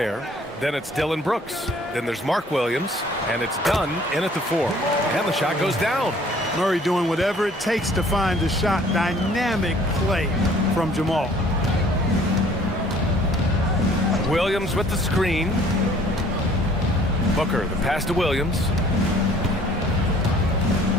Then it's Dylan Brooks. Then there's Mark Williams. And it's Dunn in at the 4. And the shot goes down. Murray doing whatever it takes to find the shot. Dynamic play from Jamal. Williams with the screen. Booker, the pass to Williams.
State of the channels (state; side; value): normal; both; correlation 0.55